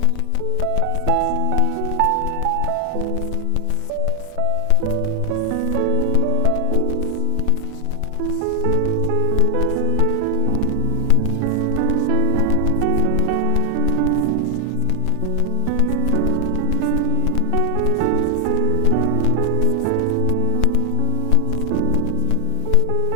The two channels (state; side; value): different; both; correlation 0.00